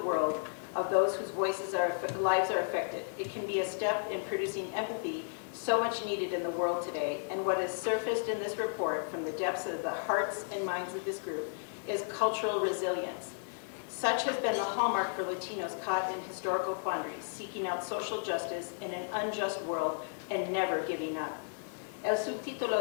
world of those whose lives are affected. It can be a step in producing empathy so much needed in the world today, and what has surfaced in this report from the depths of the hearts and minds of this group is cultural resilience. Such has been the hallmark for Latinos caught in historical quandaries, seeking out social justice in an unjust world and never giving up." El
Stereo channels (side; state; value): right; silent; 55 dB below the other